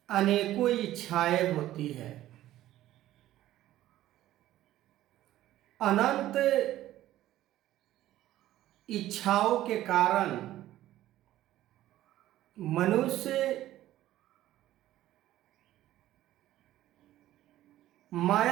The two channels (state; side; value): quieter; left; 14.1 dB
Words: अनेकों इच्छाएं होती है। अनंत इच्छाओं के कारण मनुष्य